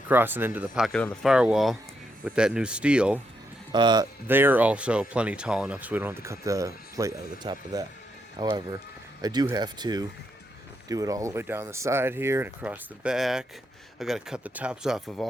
and into the pocket on the firewall with that new steel, they're also plenty tall enough so we don't have to cut the plate out of the top of that. However, I do have to do it all the way down the side here and across the back. I got to cut the tops off of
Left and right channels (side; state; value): both; normal; correlation 0.80